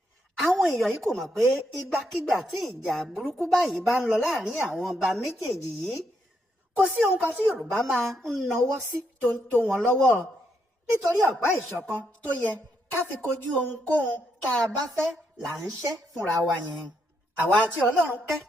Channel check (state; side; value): normal; both; correlation 0.78